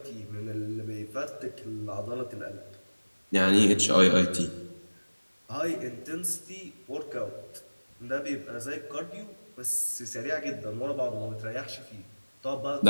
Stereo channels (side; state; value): both; inverted; correlation -1.00